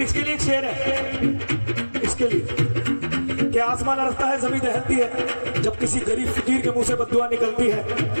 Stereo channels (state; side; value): inverted; both; correlation -1.00